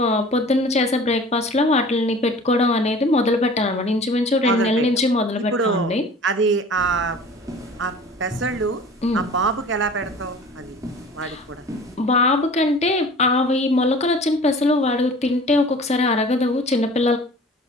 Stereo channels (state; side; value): normal; both; correlation 0.44